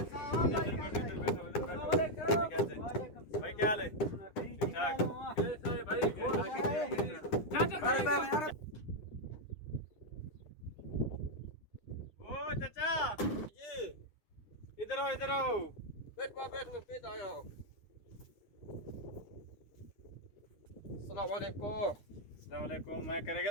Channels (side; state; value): right; late; 9.8 ms